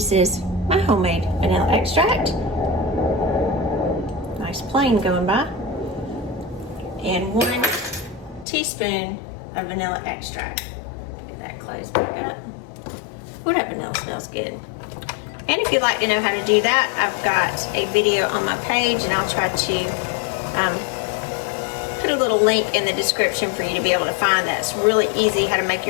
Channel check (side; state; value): right; drops out; at 8.5 s